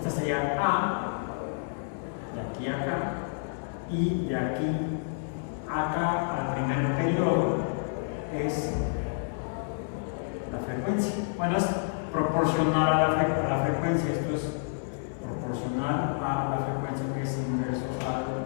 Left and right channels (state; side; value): silent; right; 58 dB below the other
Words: sería a, de aquí a acá, y de aquí a acá al primer periodo es la frecuencia. Bueno, es proporcional a la frecuencia. Esto es proporcional a la frecuencia, que es inverso a